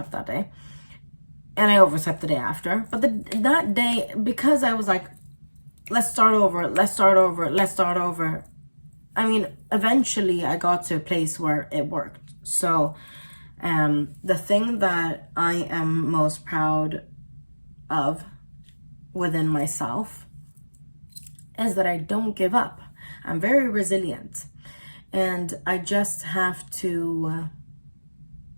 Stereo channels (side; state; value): both; inverted; correlation -1.00